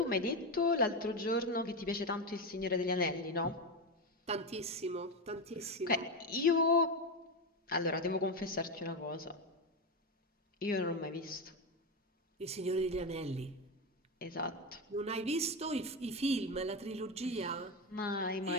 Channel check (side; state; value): both; normal; correlation 0.13